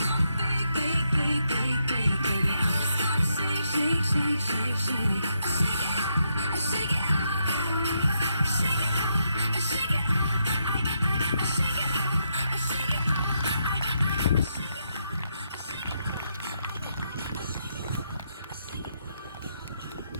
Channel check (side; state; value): both; inverted; correlation -0.79